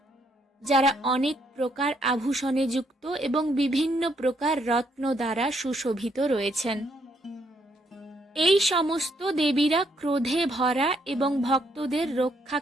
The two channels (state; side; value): normal; both; correlation 0.72